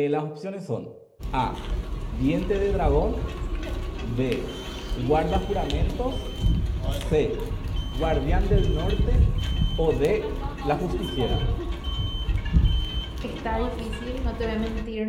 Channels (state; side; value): identical; both; correlation 1.00